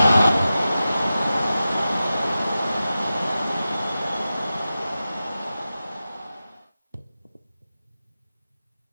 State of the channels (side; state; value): both; inverted; correlation -0.93